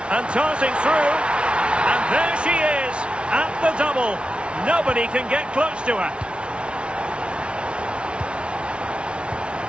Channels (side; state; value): left; late; 0.058 ms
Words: and tossing through. And there she is at the double. Nobody can get close to her.